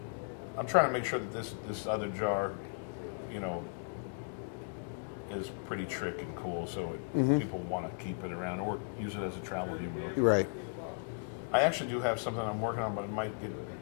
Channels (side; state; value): right; silent; digital silence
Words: I'm trying to make sure that this other jar, you know, is pretty trick and cool, so people want to keep it around or use it as a travel humidor. Right. I actually do have something I'm working on, but it might get